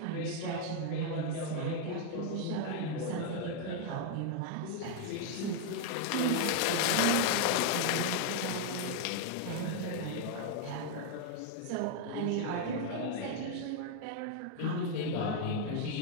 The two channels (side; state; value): both; different; correlation 0.00